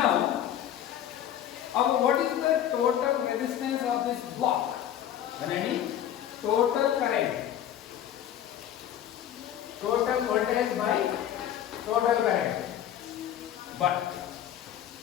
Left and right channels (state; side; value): quieter; right; 10.9 dB